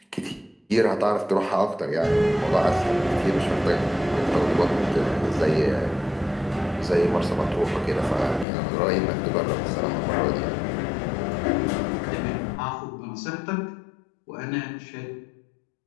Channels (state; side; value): drops out; right; at 8.5 s